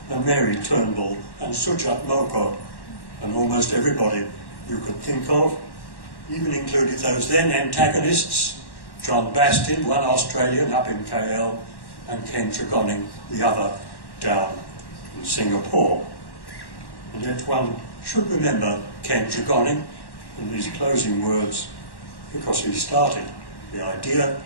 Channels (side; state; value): right; late; 1.1 ms